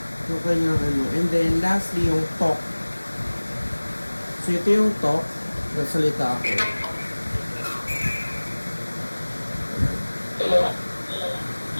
Yung kanyang ano. And then, lastly, yung talk. So, ito yung talk. Nagsalita ako. Hello.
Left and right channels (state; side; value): inverted; both; correlation -1.00